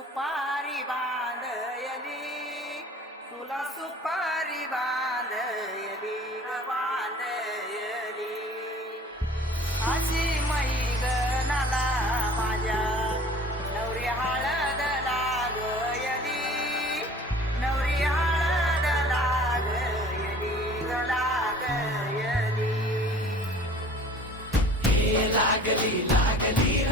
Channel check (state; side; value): normal; both; correlation 0.47